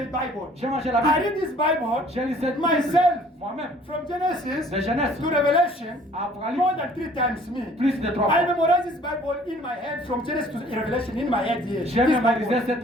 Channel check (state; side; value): normal; both; correlation 0.55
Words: the Bible. J'ai mangé la I Bible. read this Bible J'ai lu cette myself Bible moi-même. from Genesis De Genèse to Revelation à more Apocalypse, than 3 times me. plus de 3 I fois. memorized this Bible in my head from Genesis to Revelation in my head here. J'ai This mémorisé Bible.